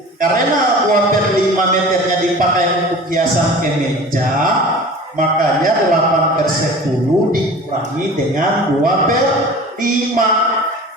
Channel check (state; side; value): normal; both; correlation 0.40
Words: Karena 2/5 meternya dipakai untuk hiasan kemeja, makanya 8/10 dikurangi dengan 2/5.